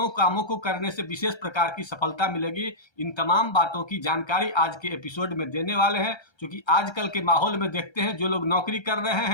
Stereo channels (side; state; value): right; late; 1.3 ms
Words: कामों को करने से विशेष प्रकार की सफलता मिलेगी। इन तमाम बातों की जानकारी आज के एपिसोड में देने वाले हैं। क्योंकि आजकल के माहौल में देखते हैं जो लोग नौकरी कर रहे